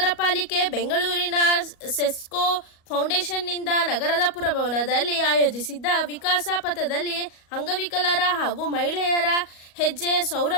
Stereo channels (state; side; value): late; right; 37 ms